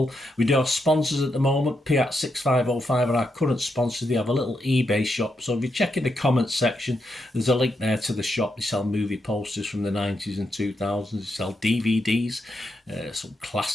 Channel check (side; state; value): both; normal; correlation 0.82